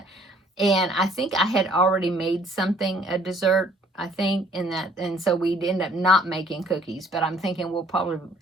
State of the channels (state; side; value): normal; both; correlation 0.59